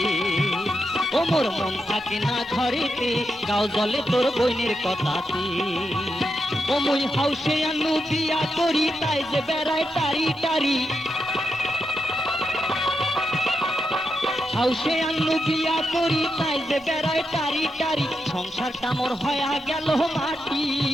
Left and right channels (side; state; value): both; normal; correlation 0.85